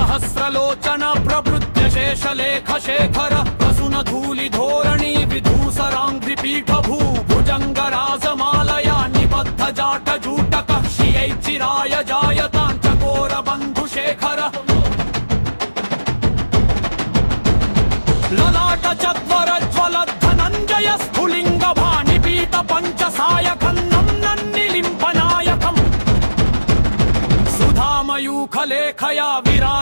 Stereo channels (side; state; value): both; inverted; correlation -1.00